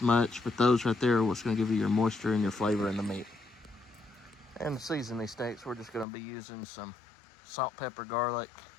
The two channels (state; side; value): drops out; right; at 6.1 s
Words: much, but those right there are what's going to give you your moisture and your flavor in the meat. And to season these steaks, we're just going to be using some salt, pepper, garlic,